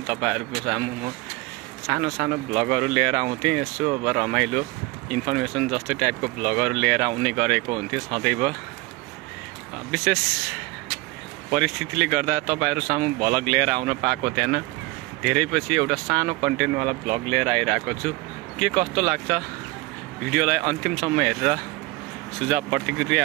तपाईहरुको सामु म सानो सानो ब्लगहरू लिएर आउँथेँ। यसो अब रमाइलो इन्फर्मेसन जस्तै टाइपको ब्लगहरू लिएर आउने गरेको हुन्थ्यो सदैव। विशेष परिस्थितिले गर्दा तपाईहरु सामु भ्लग लिएर आउन पाएको थिएन। धेरै पछि एउटा सानो कन्टेन्टवाला भ्लग लिएर आइरहेको छु। के कस्तो लाग्छ भिडियोलाई अन्तिमसम्म हेरेर सुझाव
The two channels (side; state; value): left; quieter; 21.9 dB